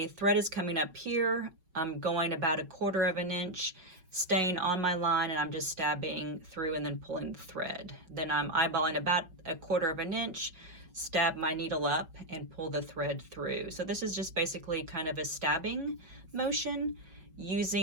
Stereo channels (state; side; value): late; left; 5.3 ms